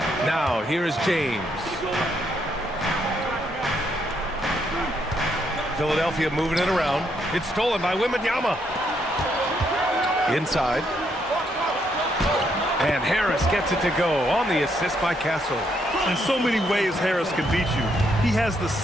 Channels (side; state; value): both; normal; correlation 0.75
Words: Now here is James. Philadelphia moving it around. It's stolen by Wembanyama. Inside. And Harris gets it to go on the assist by Castle. In so many ways, Harris can beat you. He has the